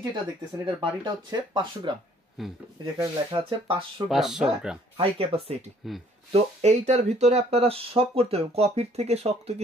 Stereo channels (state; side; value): normal; both; correlation 0.60